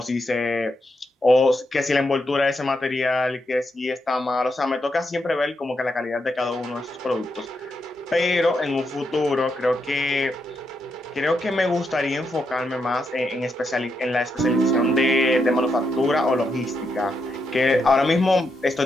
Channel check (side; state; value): both; normal; correlation 0.82